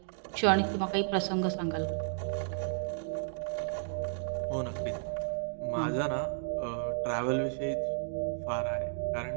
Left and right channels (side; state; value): left; silent; digital silence